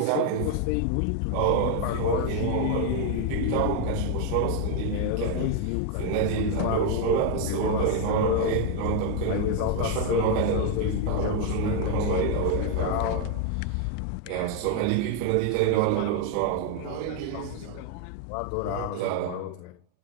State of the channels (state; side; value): different; both; correlation 0.01